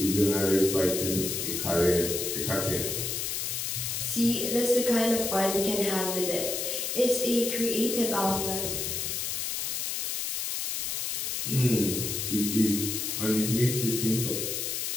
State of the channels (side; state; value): left; noise; hiss, 2 dB below the sound